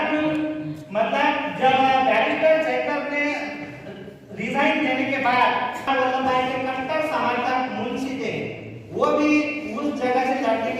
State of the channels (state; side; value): identical; both; correlation 1.00